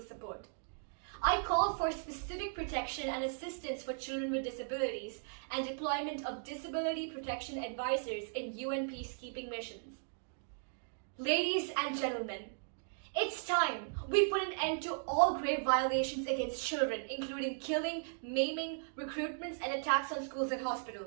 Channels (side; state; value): left; silent; digital silence